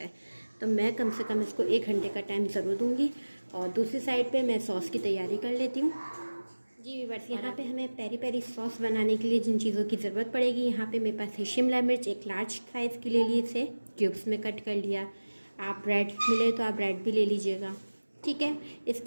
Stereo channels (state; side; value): inverted; both; correlation -1.00